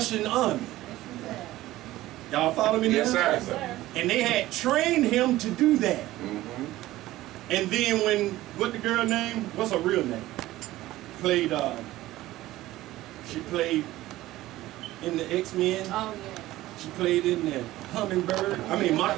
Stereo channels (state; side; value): quieter; left; 16.3 dB